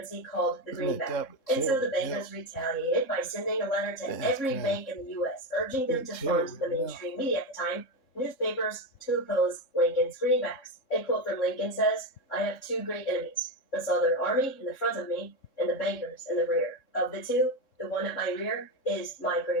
called the greenback. And so the bankers retaliated by sending a letter to every bank in the U.S., urging them to fund the mainstream media at the time, newspapers, to oppose Lincoln's greenbacks. A quote from Lincoln says, "I have two great enemies, the Southern Army in the front of me, and the bankers in the rear. Of the two, the one at my rear is my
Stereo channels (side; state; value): right; late; 3.6 ms